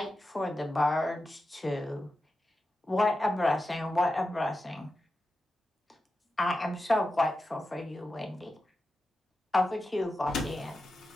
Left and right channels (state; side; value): normal; both; correlation 0.91